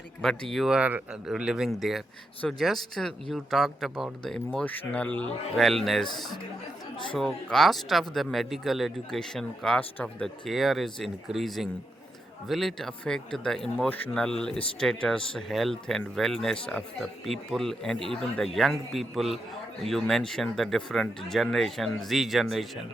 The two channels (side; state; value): both; normal; correlation 0.84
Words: but you are living there. So just you talked about the emotional wellness. So cost of the medical education, cost of the care is increasing. Will it affect the emotional status, health, and wellness of the people and even the young people? You mentioned the different generation, Z